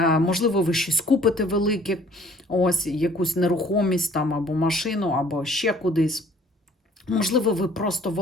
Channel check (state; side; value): normal; both; correlation 0.56